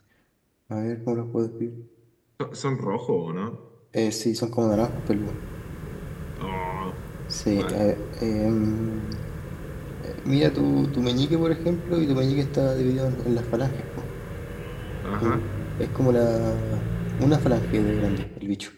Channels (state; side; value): identical; both; correlation 1.00